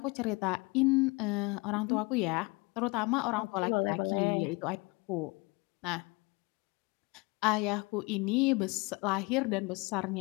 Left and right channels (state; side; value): quieter; right; 26.8 dB